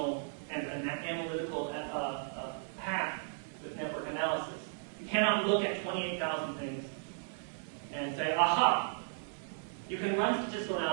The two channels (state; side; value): silent; left; digital silence